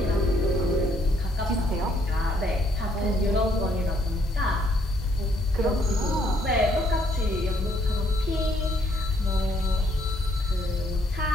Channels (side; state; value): both; normal; correlation 0.68